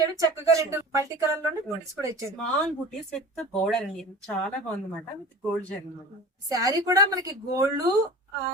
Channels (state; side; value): normal; both; correlation 0.37